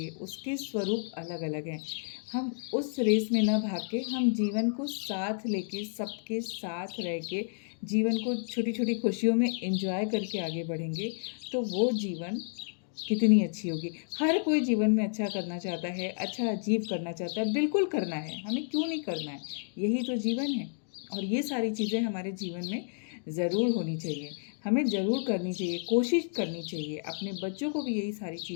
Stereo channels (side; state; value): right; silent; digital silence